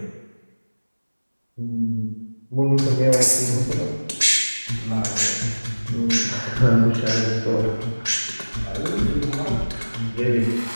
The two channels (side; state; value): both; inverted; correlation -1.00